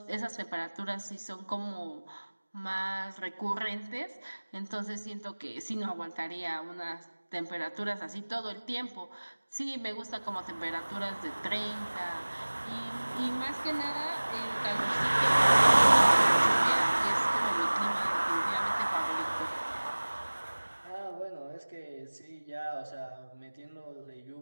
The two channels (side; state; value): both; inverted; correlation -1.00